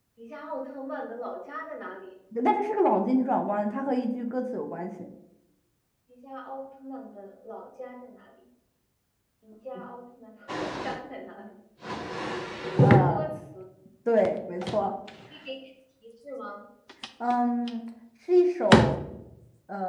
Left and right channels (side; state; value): both; identical; correlation 1.00